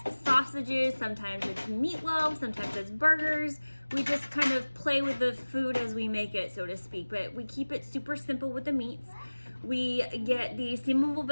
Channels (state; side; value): inverted; both; correlation -1.00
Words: sausages, sometimes it's meatloaf, sometimes it's burgers. We just kind of play with the food as we make it, so to speak. But we keep it super simple with the meats. We get the steamable